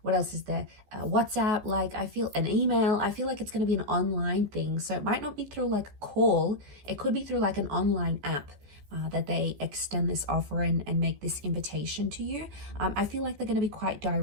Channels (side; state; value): left; late; 15 ms